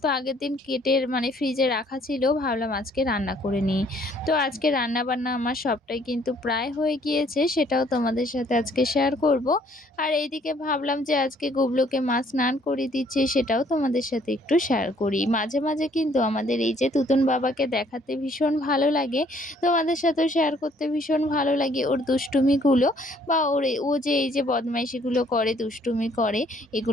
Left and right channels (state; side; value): normal; both; correlation 0.62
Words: আগের দিন কেটে মানে ফ্রিজে রাখা ছিল ভাবলাম আজকে রান্না করে নিই। তো আজকে রান্না-বান্না আমার সবটাই কিন্তু প্রায় হয়ে গিয়েছে। সেটাও তোমাদের সাথে আজকে শেয়ার করব। আর এইদিকে ভাবলাম যে আজকে গুবলুকে মা স্নান করিয়ে দিচ্ছে সেটাও তোমাদের সাথে একটু শেয়ার করি। মাঝে, মাঝে কিন্তু আমাদের এই যে তুতুন বাবাকে দেখাতে ভীষণ ভালো লাগে। তোমাদের সাথেও শেয়ার করতে ভীষণ ভালো লাগে ওর দুষ্টুমিগুলো বা ও যে এই যে বদমাইশিগুলো করে, দুষ্টুমি করে